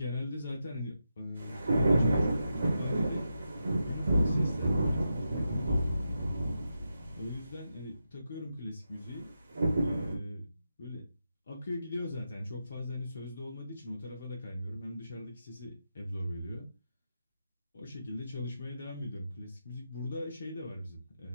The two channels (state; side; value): inverted; both; correlation -0.87